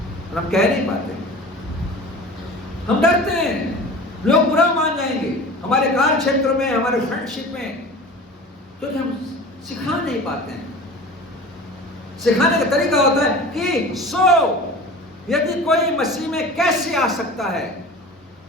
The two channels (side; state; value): both; normal; correlation 0.38